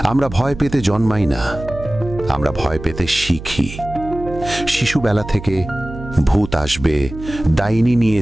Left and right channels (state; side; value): noise; right; hum, 12 dB below the sound